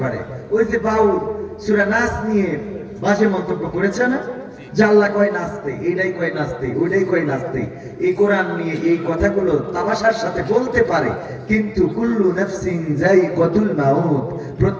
পারে। ওই যে বাউল সূরা নাস নিয়ে বাজে মন্তব্য করেছে না, যে আল্লাহ কয় নাচতে, এইটাই কয় নাচতে, ওইটাই কয় নাচতে। এই কোরআন নিয়ে এই কথাগুলো তামাশার সাথে বলতে পারে, কিন্তু কুল্লু নাফসিন যায়িকাতুল মাউত,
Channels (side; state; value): both; identical; correlation 1.00